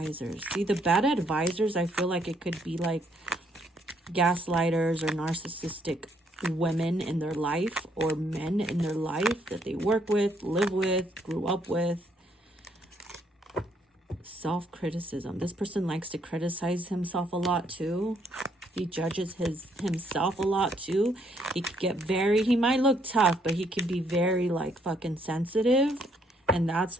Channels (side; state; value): both; normal; correlation 0.70